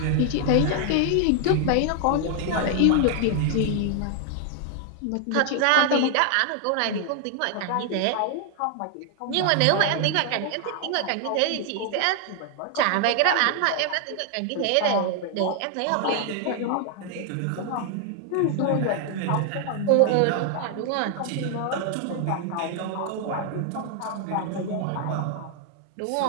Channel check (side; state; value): both; different; correlation 0.00